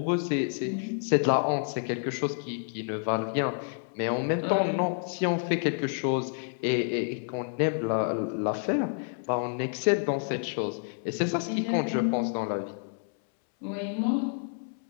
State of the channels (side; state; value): right; silent; 59 dB below the other